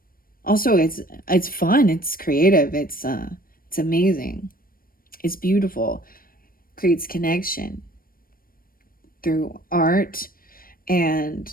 Also, it's fun, it's creative, it's amazing. It's beautiful. Creates connection through art and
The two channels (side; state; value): right; late; 0.42 ms